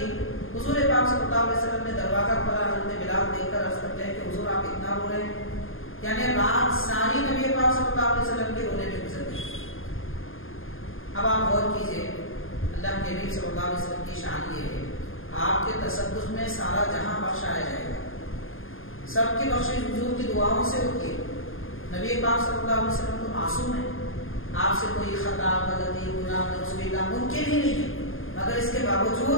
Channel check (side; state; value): right; late; 0.59 ms